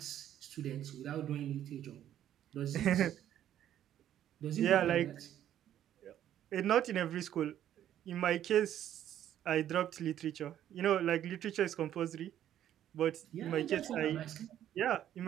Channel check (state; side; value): quieter; left; 11.2 dB